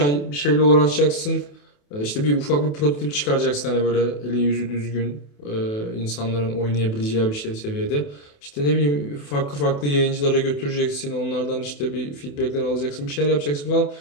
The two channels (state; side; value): late; right; 28 ms